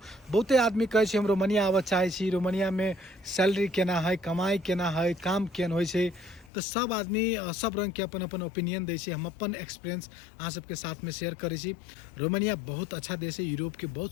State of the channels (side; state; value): right; drops out; at 6.5 s